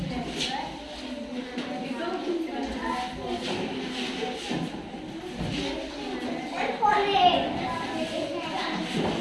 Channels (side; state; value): both; identical; correlation 1.00